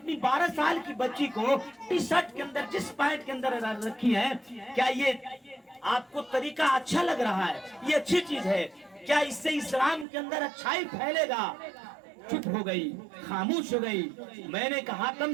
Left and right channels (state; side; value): drops out; left; at 10.1 s